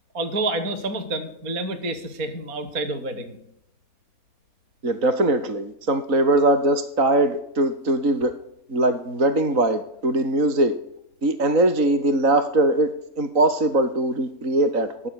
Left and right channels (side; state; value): left; late; 3.9 ms